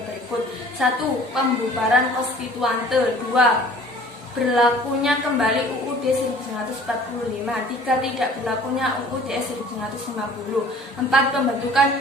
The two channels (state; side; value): normal; both; correlation 0.49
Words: berikut. 1. Pembubaran konstituante. 2. Berlakunya kembali UUD 1945. 3. Tidak berlakunya UUD 1950. 4. Pembentukan